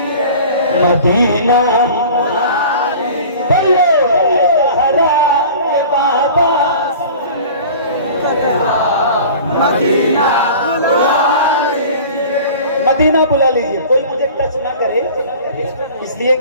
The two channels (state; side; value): inverted; both; correlation -0.41